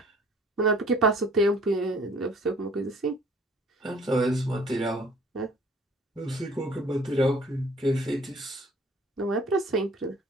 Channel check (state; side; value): normal; both; correlation 0.54